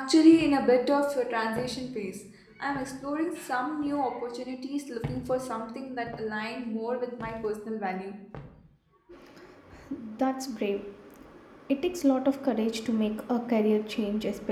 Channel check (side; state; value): both; identical; correlation 1.00